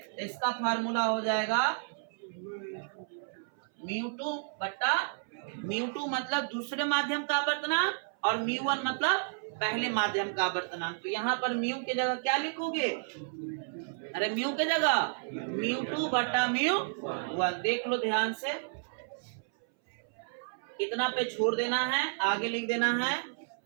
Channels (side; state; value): left; silent; 57 dB below the other